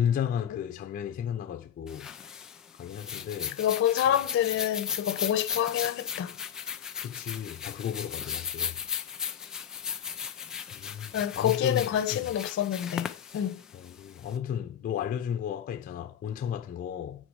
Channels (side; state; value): right; quieter; 9.3 dB